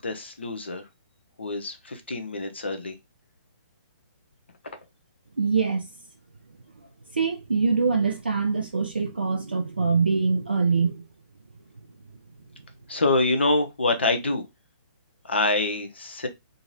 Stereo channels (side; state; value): both; inverted; correlation -0.68